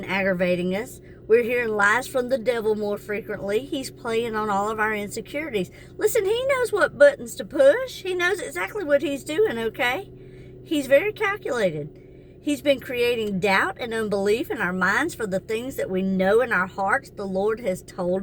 aggravating us. We're hearing lies from the devil more frequently. He's playing on all of our insecurities. Listen, he knows what buttons to push. He knows exactly what he's doing, okay? He's very calculated. He's been creating doubt and unbelief in our minds for the things that we know in our hearts the Lord has told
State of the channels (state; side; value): identical; both; correlation 1.00